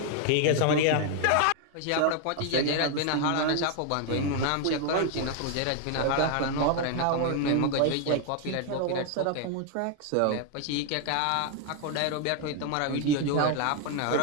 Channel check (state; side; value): different; both; correlation 0.01